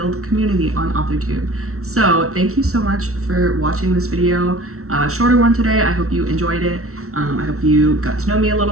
community on authortube. So thank you so much for watching this video. Shorter one today. I hope you enjoyed it. I hope you got to know me a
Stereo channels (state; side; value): late; left; 0.63 ms